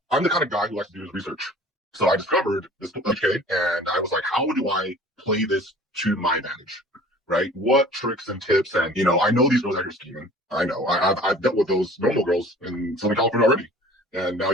I'm the kind of guy who likes to do his research. So I discovered this okay, and I was like, how do I play this to my advantage? Right? What tricks and tips? And I know these girls out here scheming. I know. I've dealt with those normal girls in Southern California already. And now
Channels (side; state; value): both; normal; correlation 0.47